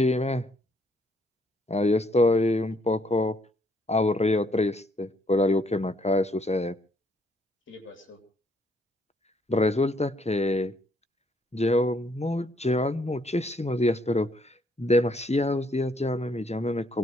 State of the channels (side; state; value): both; normal; correlation 0.69